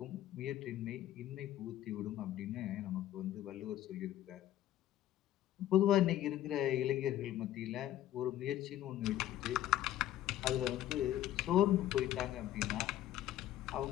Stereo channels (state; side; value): quieter; right; 13.0 dB